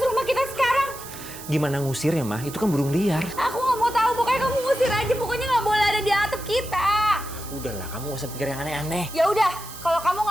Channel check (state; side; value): noise; right; hiss, 14 dB below the sound